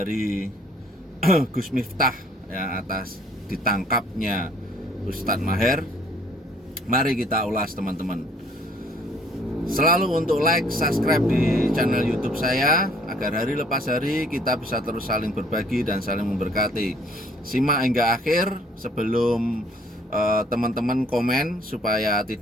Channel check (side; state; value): both; normal; correlation 0.59